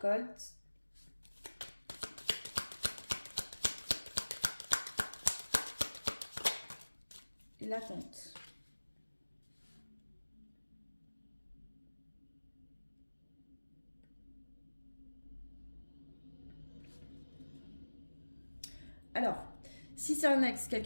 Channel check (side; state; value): both; inverted; correlation -1.00